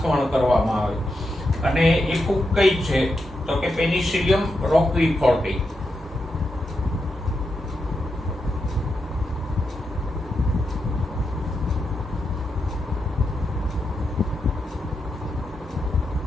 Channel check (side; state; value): both; normal; correlation 0.86